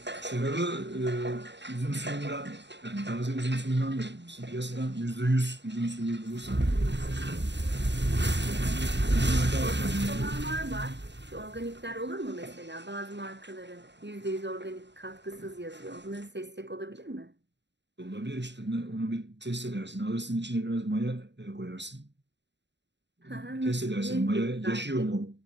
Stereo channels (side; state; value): left; late; 0.52 ms